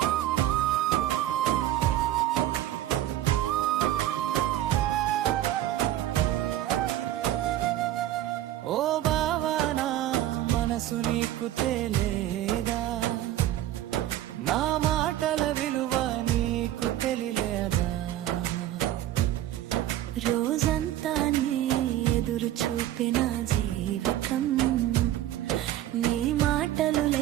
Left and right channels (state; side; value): quieter; left; 13.3 dB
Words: ఓ బావా నా మనసు నీకు తెలియదా, నా మాటల విలువ నీకు తెలియదా. రోజంతా నీ ఎదురు చూపిన జీవితం, నీ మాటలు